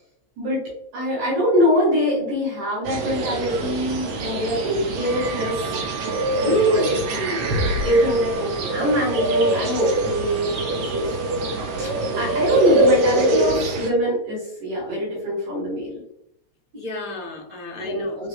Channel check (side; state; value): left; late; 12 ms